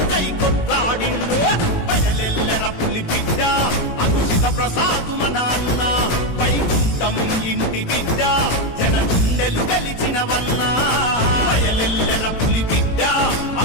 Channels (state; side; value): late; right; 18 ms